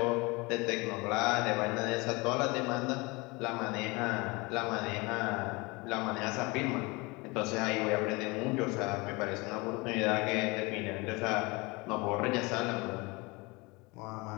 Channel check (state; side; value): quieter; right; 25.5 dB